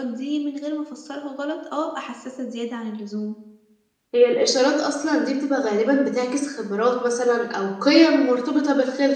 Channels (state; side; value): identical; both; correlation 1.00